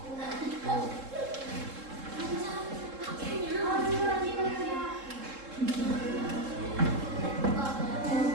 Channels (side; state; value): left; late; 3.7 ms